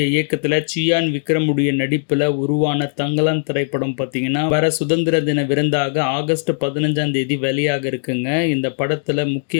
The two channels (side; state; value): right; silent; digital silence